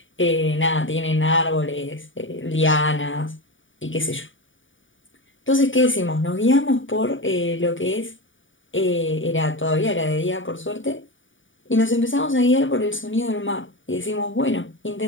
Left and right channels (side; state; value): right; late; 0.57 ms